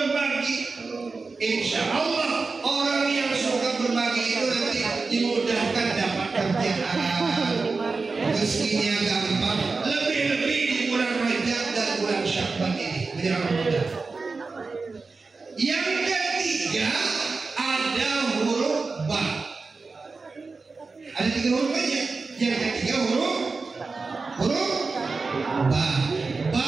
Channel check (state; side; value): quieter; left; 4.1 dB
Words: insya Allah orang yang suka berbagi itu nanti dimudahkan dapat kerjaan, rezekinya gampang, lebih-lebih di bulan Rajab dan bulan Sya'ban ini menjelang Ramadan. Yang ketiga ada huruf ba. Ada 3 huruf aja. Yang ketiga huruf ba.